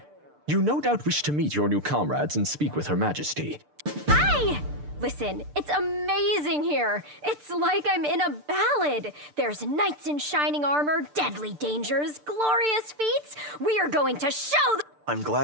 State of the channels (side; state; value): left; late; 6.8 ms